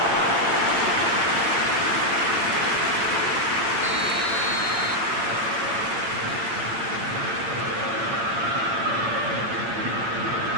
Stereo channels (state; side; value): late; left; 8.8 ms